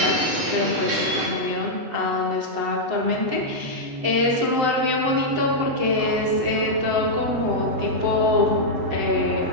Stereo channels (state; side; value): late; left; 8.1 ms